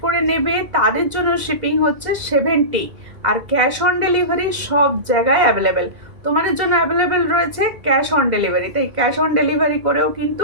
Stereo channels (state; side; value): late; left; 2.0 ms